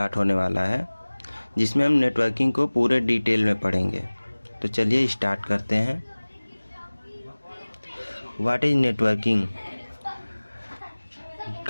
होने वाला है, जिसमें हम नेटवर्किंग को पूरे डिटेल में पढ़ेंगे। तो चलिए स्टार्ट करते हैं। What is networking?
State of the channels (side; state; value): both; inverted; correlation -1.00